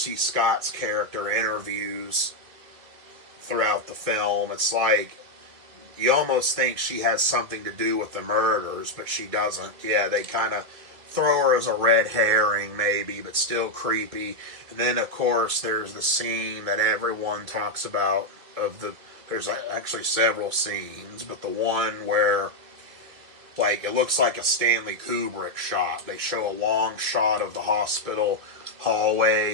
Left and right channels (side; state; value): left; late; 2.3 ms